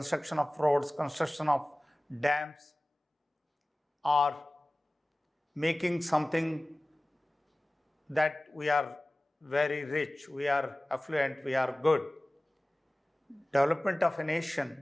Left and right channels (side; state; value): both; normal; correlation 0.98